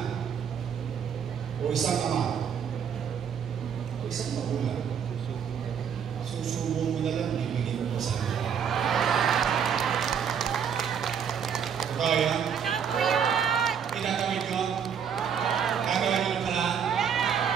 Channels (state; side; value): quieter; left; 7.7 dB